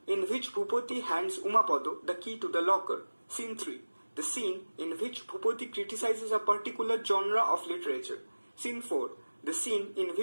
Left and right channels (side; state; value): both; inverted; correlation -1.00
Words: in which Bhupati hands Umapada the key to the locker. Scene 3. The scene in which Bhupati criticizes a particular genre of literature. Scene 4. The scene in